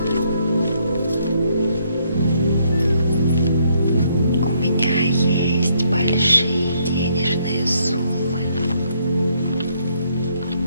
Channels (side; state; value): both; inverted; correlation -0.70